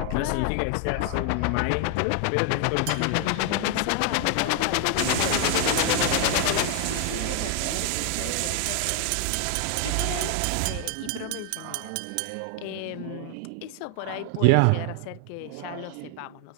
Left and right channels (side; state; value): both; different; correlation 0.00